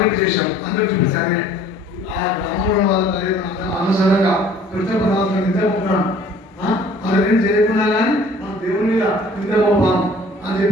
చేశాం. అందరూ చూపించాలి ఆ గ్రామంలో వాళ్ళ అనుసరంగా కృష్ణపదార్థం నిద్రపోతున్నాను అదేం చేయకుండా కానీ మన దేవుని మీద నిద్రపోపాం అని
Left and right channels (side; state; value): both; normal; correlation 0.53